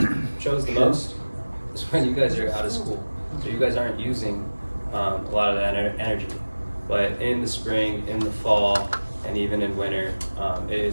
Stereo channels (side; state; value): both; inverted; correlation -1.00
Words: shows the most, is when you guys are out of school. So you guys aren't using a lot of that energy. But in the spring, in the fall, and even in winter, it